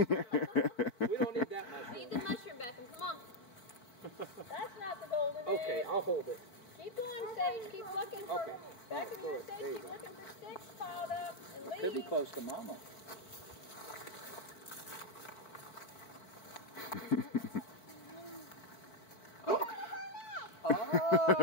We don't need that much. Eat the mushroom, Beckham. Come on. That's not the golden egg. Okay, I'll hold it. Keep going, Sage. Keep looking for Okay. Beckham, Throw you're it. safe. There you Keep go. looking for sticks piled up and leaves. Could be close to Mama.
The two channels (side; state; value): right; late; 4.5 ms